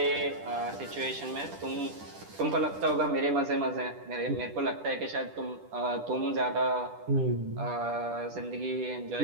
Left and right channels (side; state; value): left; late; 10 ms